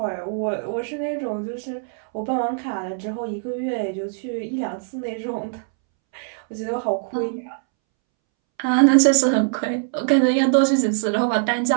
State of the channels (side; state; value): left; silent; 64 dB below the other